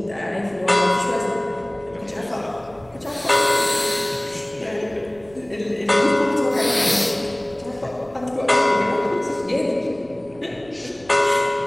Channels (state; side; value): noise; right; rumble, 26 dB below the sound